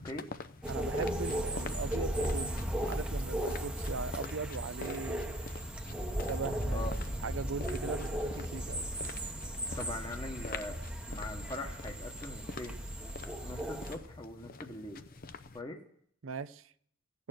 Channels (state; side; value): normal; both; correlation 0.54